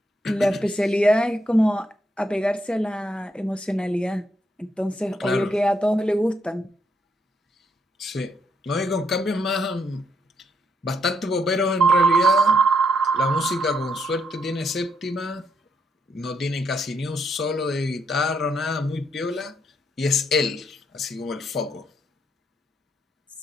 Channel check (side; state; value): both; normal; correlation 0.76